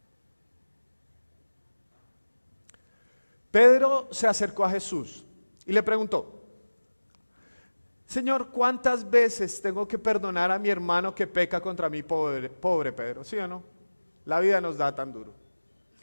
Pedro se acercó a Jesús y le preguntó: Señor, ¿cuántas veces tengo que perdonar a mi hermano que peca contra mí? Pobre Pedro, ¿sí o no? La vida nos da tan duro.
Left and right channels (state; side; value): inverted; both; correlation -1.00